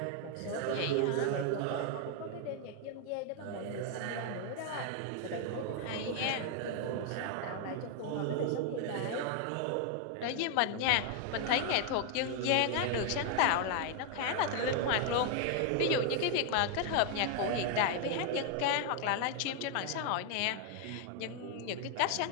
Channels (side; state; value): both; different; correlation 0.00